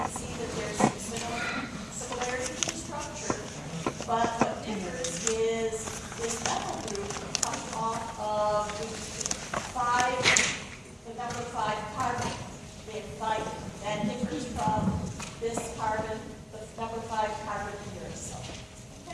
see that there's some similarities in structure, but what differs is this methyl group comes off of the number 5 carbon. They have thymine. That differs from this carbon, the number 5 carbon in uracil.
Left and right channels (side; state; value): both; identical; correlation 1.00